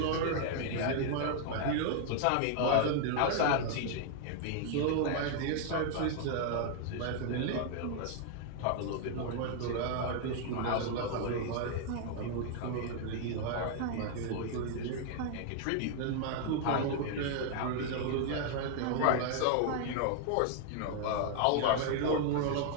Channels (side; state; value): both; different; correlation 0.00